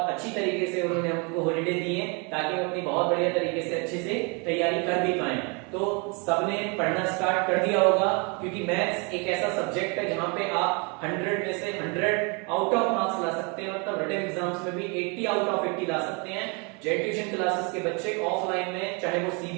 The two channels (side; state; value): left; quieter; 32.3 dB